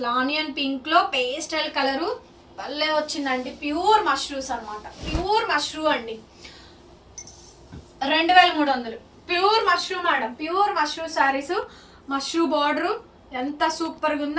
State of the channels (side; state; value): both; identical; correlation 1.00